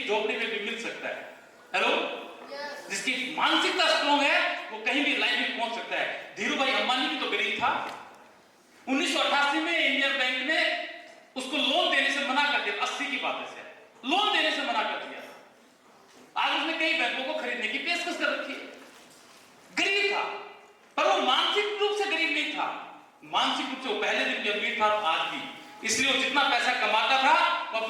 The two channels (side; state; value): both; identical; correlation 1.00